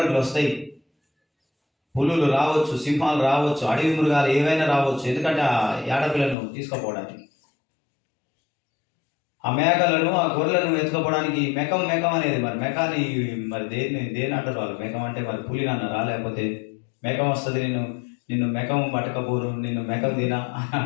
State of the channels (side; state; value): right; drops out; at 6.4 s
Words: వస్తాయి, పులులు రావచ్చు, సింహాలు రావచ్చు, అడవి మృగాలు ఏవైనా రావచ్చు. ఎందుకంటే ఆ ఆడపిల్లను తీసుకుపోవడానికి, ఆ మేకలను, ఆ గొర్రెలను ఎత్తుకపోవడానికి మెకం అనేది, మరి మెకాని మరి దేని అంటారు వాళ్ళు? మెకం అంటే మరి పులిని అన్నారా? లేకపోతే మెకం వస్తుంది, నిన్ను మెకం పట్టకపోరు, నిన్ను మెకం తినా అని